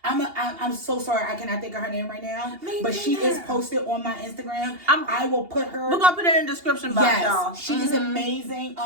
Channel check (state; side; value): late; left; 2.8 ms